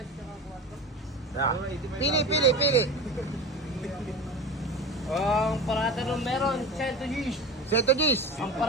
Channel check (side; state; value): both; normal; correlation 0.31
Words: Yeah. Pili. Ang parada nung meron, 100 Gs. Seto Gis. Ang